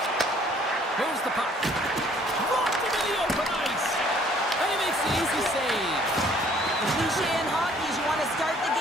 Moves the puck. Dropped into the open ice. And he makes the easy save. The cliche in hockey is you want to start the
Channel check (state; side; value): normal; both; correlation 0.59